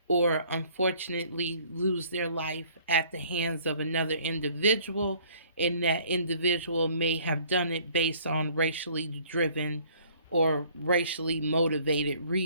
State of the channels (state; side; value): inverted; both; correlation -0.57